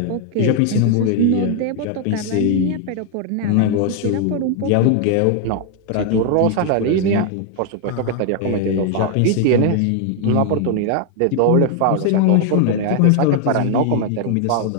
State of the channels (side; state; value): both; different; correlation 0.00